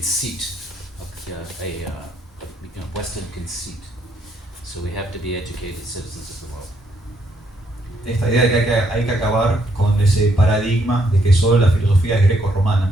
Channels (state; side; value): normal; both; correlation 0.72